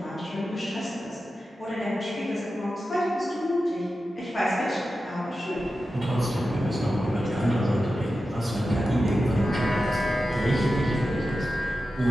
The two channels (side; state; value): both; normal; correlation 0.92